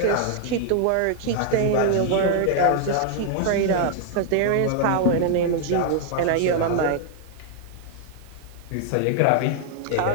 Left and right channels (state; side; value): different; both; correlation 0.00